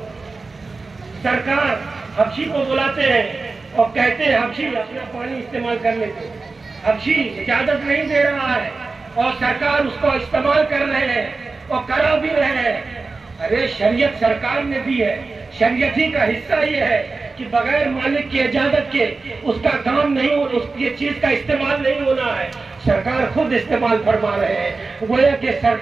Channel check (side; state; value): left; quieter; 3.9 dB